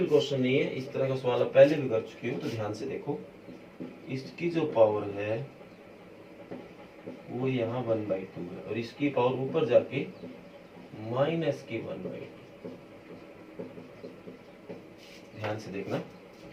क्वेश्चन नहीं है, इस तरह का सवाल आप पहले भी कर चुके हो, तो ध्यान से देखो। इसकी जो पावर है वो यहाँ 1/2 है, और इसकी पावर ऊपर जाके -1/2, ध्यान से देखना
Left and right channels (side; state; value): both; identical; correlation 1.00